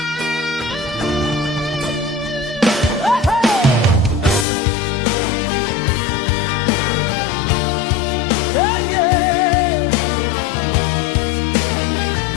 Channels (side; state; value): right; drops out; at 4.5 s